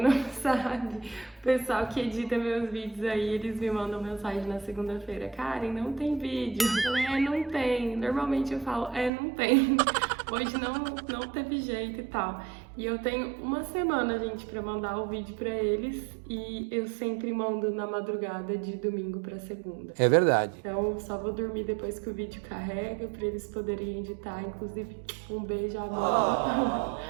não sabe, o pessoal que edita meus vídeos aí, eles me mandam mensagem na segunda-feira: Karen, não tem vídeo. Eu falei, não tem. Normalmente eu falo, não tem. Hoje não teve jeito e tal. E eu tenho uma semana, gente, pra mandar o vídeo pra eles. E eu sempre mando na madrugada de domingo pra segunda. É verdade. Então só vou dormir depois que o vídeo carrega pra eles poderem editar. Inclusive, um beijo, amor.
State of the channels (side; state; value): left; drops out; at 9.1 s